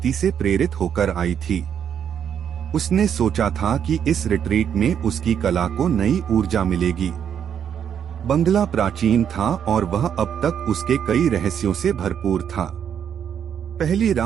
से प्रेरित होकर आई थी। उसने सोचा था कि इस रिट्रीट में उसकी कला को नई ऊर्जा मिलेगी। बंगला प्राचीन था और वह अब तक उसके कई रहस्यों से भरपूर था। पहली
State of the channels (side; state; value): left; quieter; 8.5 dB